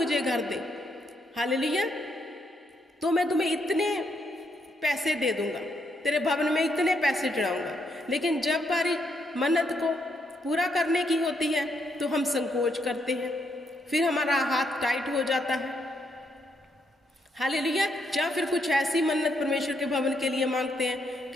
घर दे, हालेलुया, तो मैं तुम्हें इतने पैसे दे दूंगा, तेरे भवन में इतने पैसे चढ़ाऊंगा, लेकिन जब बारी मन्नत को पूरा करने की होती है तो हम संकोच करते हैं, फिर हमारा हाथ टाइट हो जाता है। हालेलुया। या फिर कुछ ऐसी मन्नत परमेश्वर के भवन के लिए मांगते हैं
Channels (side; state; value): both; normal; correlation 0.76